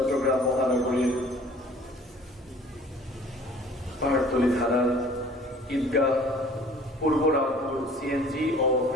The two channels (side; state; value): both; normal; correlation 0.50